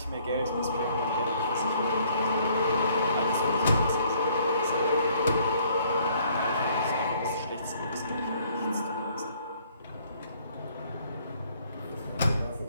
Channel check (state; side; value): inverted; both; correlation -0.63